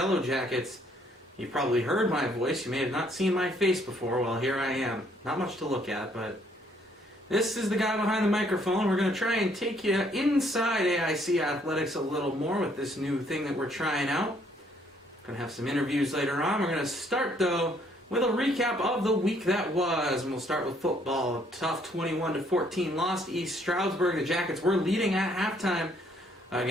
Jackets. You've probably heard my voice. You may have not seen my face before. Well, here I am. Not much to look at, but this is the guy behind the microphone. We're going to try and take you inside AIC athletics a little more with this new thing that we're trying out. Going to have some interviews later on. We're going to start, though, with a recap of the week that was, and we'll start with football. A tough 21-14 loss to East Stroudsburg. The Jackets were leading at halftime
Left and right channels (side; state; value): both; normal; correlation 0.66